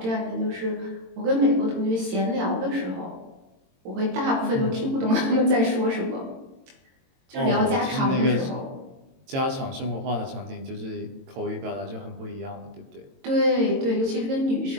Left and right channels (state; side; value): late; left; 22 ms